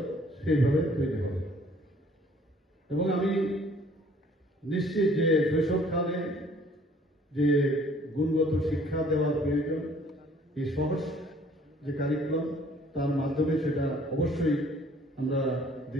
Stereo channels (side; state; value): both; normal; correlation 0.57